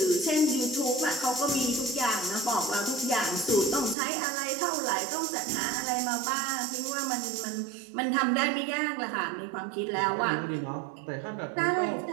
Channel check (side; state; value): left; drops out; at 4.0 s